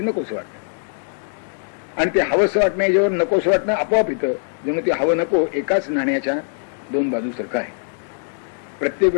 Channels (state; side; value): silent; right; 62 dB below the other